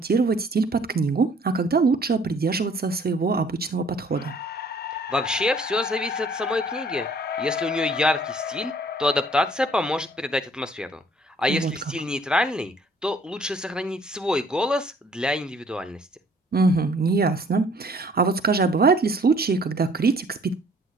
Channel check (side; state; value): both; normal; correlation 0.58